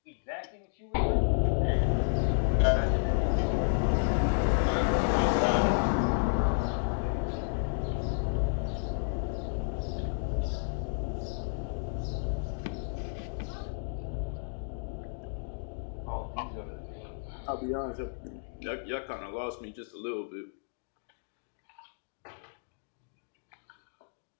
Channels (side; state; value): right; silent; digital silence